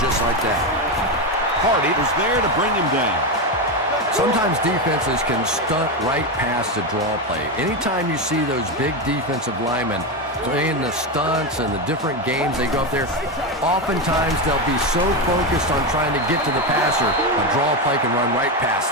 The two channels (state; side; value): normal; both; correlation 0.12